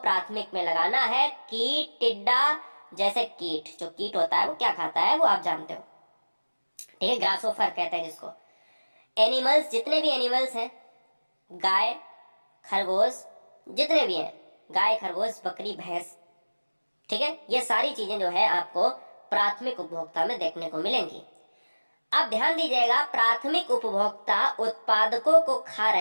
में लगाना है। कीट, टिड्डा, जैसे कीट, जो कीट होता है वो क्या खाता है वो आप जानते हो, ठीक है, ग्रासोफर कहते हैं जिसको। एनिमल्स, जितने भी एनिमल्स हैं, गाय, खरगोश, जितने भी हैं, गाय, खरगोश, बकरी, भैंस, ठीक है, ये सारी चीजें जो है आपको प्राथमिक उपभोक्ता में देखने को मिलेंगी। अब ध्यान दीजिएगा, प्राथमिक उपभोक्ता उत्पादकों को खा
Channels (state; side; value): inverted; both; correlation -1.00